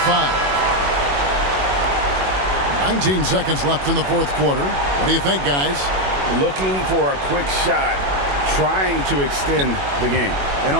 5. 19 seconds left in the fourth quarter. What do you think, guys? Looking for a quick shot, trying to extend the game. And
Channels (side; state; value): left; late; 21 ms